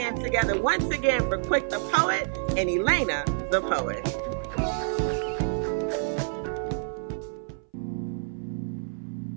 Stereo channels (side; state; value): left; silent; 59 dB below the other